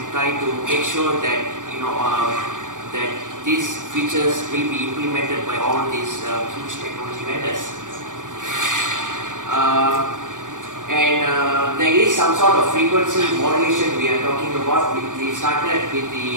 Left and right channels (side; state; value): left; late; 0.87 ms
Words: try to make sure that that these features will be implemented by all these huge technology vendors. There is some sort of frequency modulation we are talking about. We started with